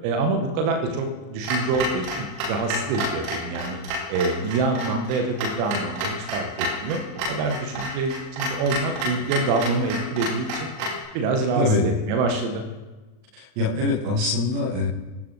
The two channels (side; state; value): left; late; 39 ms